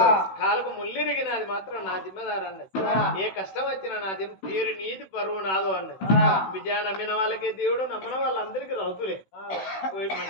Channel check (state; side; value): late; right; 16 ms